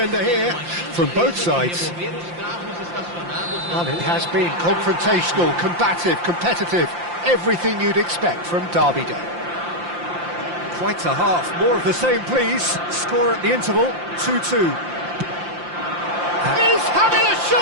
here from both sides. Well, it has been confrontational, combative, competitive, everything you'd expect from Derby Day. Quite a half, more of the same please. Score at the interval, 2-2. He's having a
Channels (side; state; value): left; late; 5.8 ms